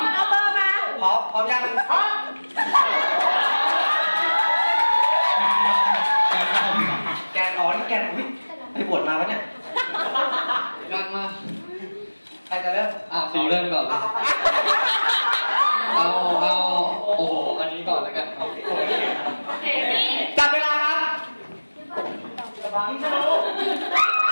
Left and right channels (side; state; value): both; inverted; correlation -1.00